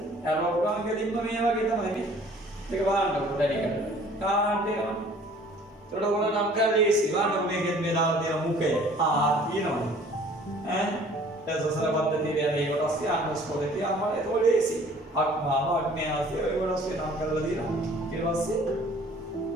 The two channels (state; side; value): normal; both; correlation 0.52